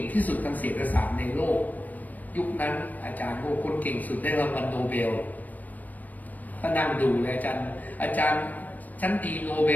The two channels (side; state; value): right; late; 0.081 ms